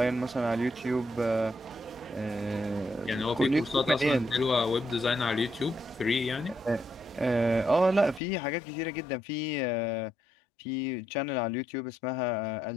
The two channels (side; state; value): right; drops out; at 8.2 s